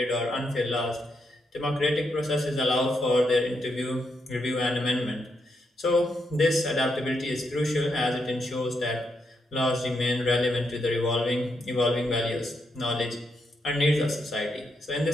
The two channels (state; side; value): normal; both; correlation 0.81